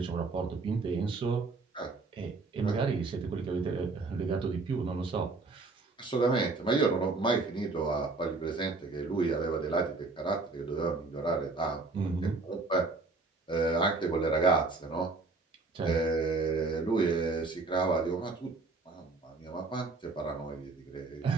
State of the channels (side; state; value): left; quieter; 3.7 dB